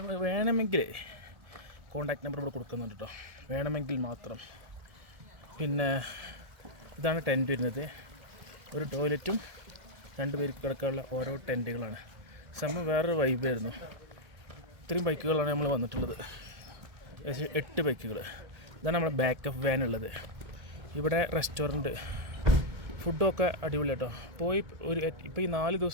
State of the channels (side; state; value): left; late; 1.7 ms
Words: വേണമെങ്കിൽ കോൺടാക്ട് നമ്പർ ഇവിടെ കൊടുക്കുന്നുണ്ട് കേട്ടോ, വേണമെങ്കിൽ മാത്രം. പിന്നെ ഇതാണ് ടെൻറ്റ് വരുന്നത്. ഒരു ടോയ്ലറ്റും 2 പേർക്ക് കിടക്കാനുള്ള ഓരോ ടെൻറ്റുകളാണ്. സംഭവം വേറൊരു വൈബായിരുന്നു. ഇത്രയും ബൈക്കുകളാണ് നമ്മൾ വന്നിട്ടുള്ളത്, 8 ബൈക്കുകൾ. ഇതാണ് നമ്മുടെ ബാക്കപ്പ് വാൻ ഉള്ളത്. ഇവിടെ റെസ്റ്റോറൻറ്റ്, ഫുഡൊക്കെ അടിപൊളി കേട്ടോ. ഇപ്പോൾ ഈ 4